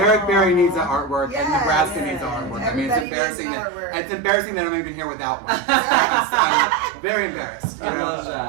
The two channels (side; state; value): left; drops out; at 3.1 s